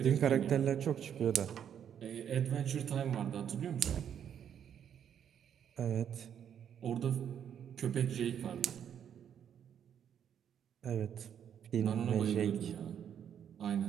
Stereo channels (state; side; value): quieter; left; 8.9 dB